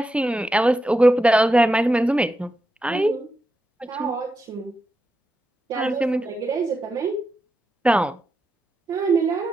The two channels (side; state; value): both; normal; correlation 0.87